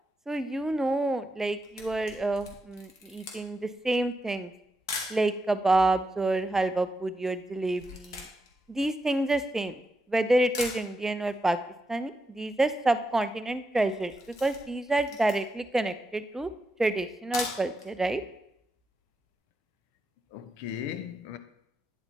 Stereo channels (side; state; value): both; normal; correlation 0.86